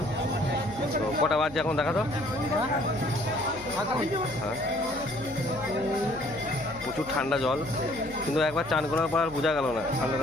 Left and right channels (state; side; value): noise; left; hum, 18 dB below the sound